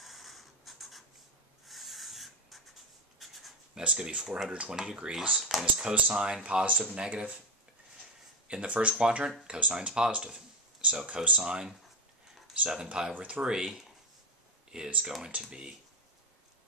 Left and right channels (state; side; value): normal; both; correlation 0.13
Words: That's going to be 420 degrees. And is cosine positive, negative? In the first quadrant, cosine's positive. So cosine 7 pi over 3 is going to be